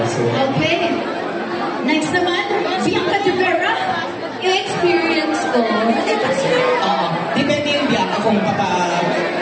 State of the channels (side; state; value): both; identical; correlation 1.00